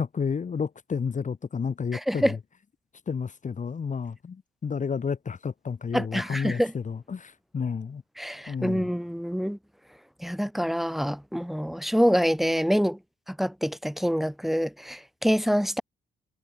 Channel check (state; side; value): normal; both; correlation 0.93